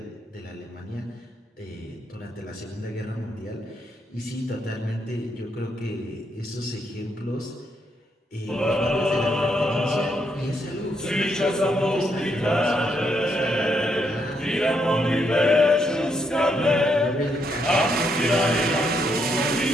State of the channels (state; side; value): normal; both; correlation 0.77